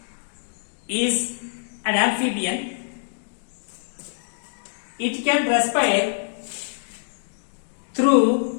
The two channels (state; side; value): silent; right; digital silence